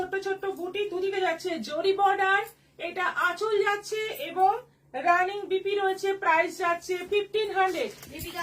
ছোট্ট বুটি, দুদিকে যাচ্ছে জরি বর্ডার। এটা আঁচল যাচ্ছে এবং রানিং বিপি রয়েছে, প্রাইস যাচ্ছে 1500। দীপিকা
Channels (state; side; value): identical; both; correlation 1.00